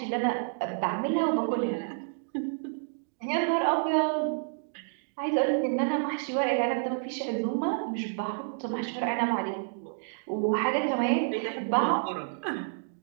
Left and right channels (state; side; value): silent; left; digital silence